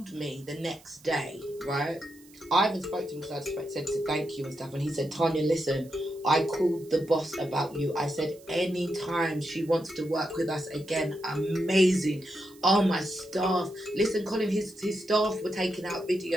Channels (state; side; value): noise; right; hiss, 25 dB below the sound